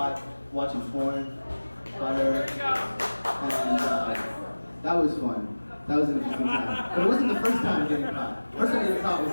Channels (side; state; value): both; inverted; correlation -1.00